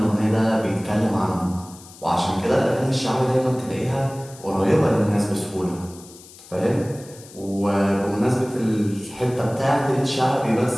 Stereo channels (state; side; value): noise; left; hiss, 20 dB below the sound